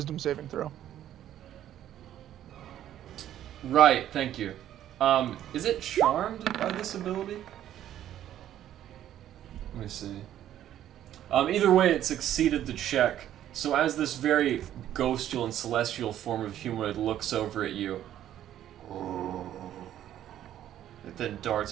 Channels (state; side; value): quieter; left; 11.6 dB